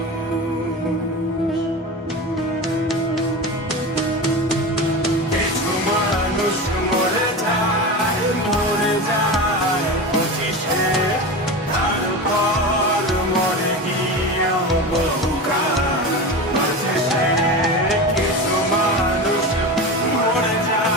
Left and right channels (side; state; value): both; normal; correlation 0.25